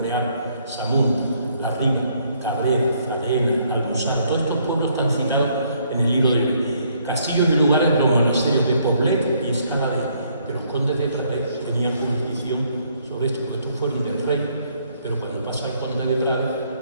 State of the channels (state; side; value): inverted; both; correlation -0.68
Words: Samún, La Riga, Cabrera, Fradena, Albusar. Todos estos pueblos están citados en el libro de castillos y lugares, los monasterios de Poblet y Escaladé, que los condes de Prades tenían jurisdicción sobre esto, porque estos fueron del rey, pero cuando pasa el conde de Prades,